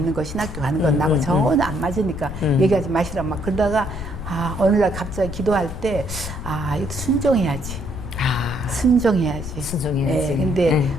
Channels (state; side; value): noise; left; rumble, 9 dB below the sound